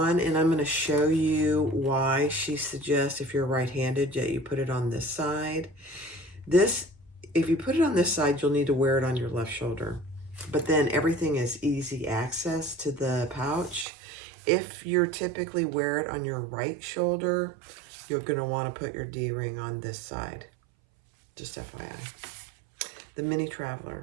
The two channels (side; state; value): left; drops out; at 13.9 s